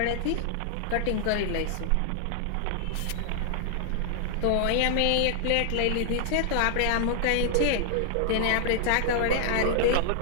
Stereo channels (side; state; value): both; different; correlation 0.00